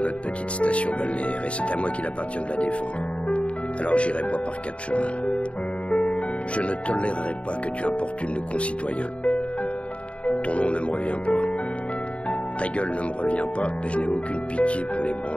petite station balnéaire et c'est à moi qu'il appartient de la défendre. Alors j'irai pas par quatre chemins. Je ne tolérerai pas que tu importunes nos concitoyens. Ton nom ne me revient pas. Ta gueule ne me revient pas et je n'ai aucune pitié pour les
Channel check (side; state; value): right; late; 0.061 ms